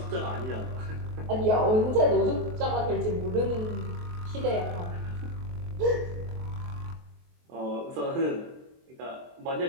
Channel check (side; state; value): left; late; 23 ms